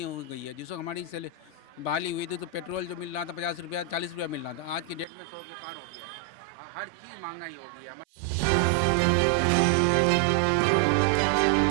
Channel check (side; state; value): left; drops out; at 5.1 s